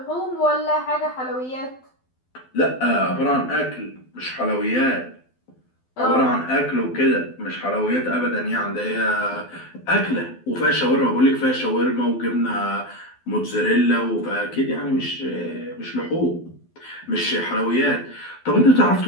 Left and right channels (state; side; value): late; right; 12 ms